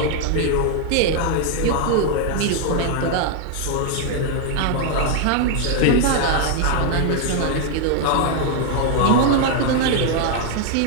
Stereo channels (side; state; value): both; different; correlation 0.00